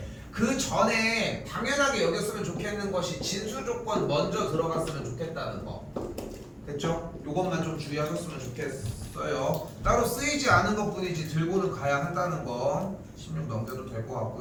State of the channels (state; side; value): identical; both; correlation 1.00